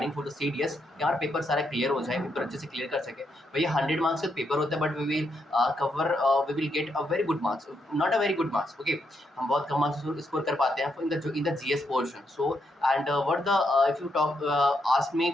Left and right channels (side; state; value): both; normal; correlation 0.79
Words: फॉर द सीडीएस, यार पेपर सारा क्लियर हो जाए, पेपर अच्छे से क्लियर कर सके। भैया 100 मार्क्स का पेपर होता है but we will cover we will get a very good marks, not a very good marks, okay. हम बहुत कम मार्क्स स्कोर कर पाते हैं in the GS portion. So and what the if you talk ask me